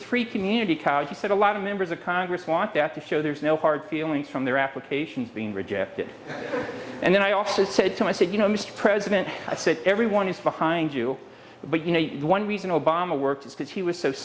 free community college? He said, a lot of members of Congress want that to show there's no hard feelings from their applications being rejected. And then I also said to him, I said, Mr. President, I said, everyone is behind you. But, the one reason Obama worked is because he was so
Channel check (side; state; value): both; identical; correlation 1.00